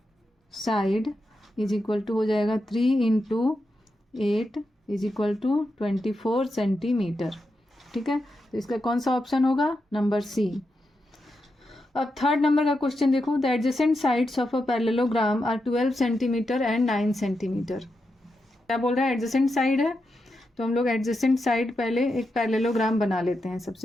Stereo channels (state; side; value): normal; both; correlation 0.87